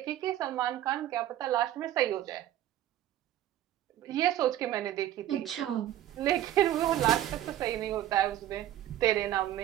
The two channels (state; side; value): quieter; left; 12.6 dB